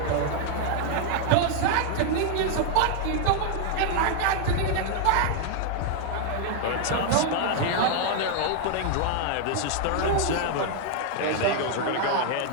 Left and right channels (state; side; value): different; both; correlation 0.00